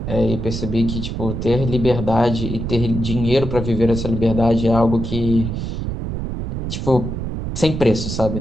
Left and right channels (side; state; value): right; noise; rumble, 4 dB below the sound